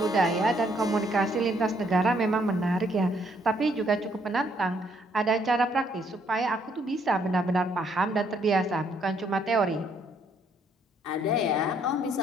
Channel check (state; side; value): normal; both; correlation 0.68